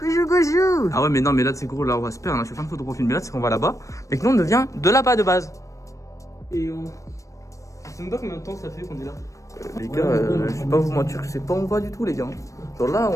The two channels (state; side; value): late; right; 0.15 ms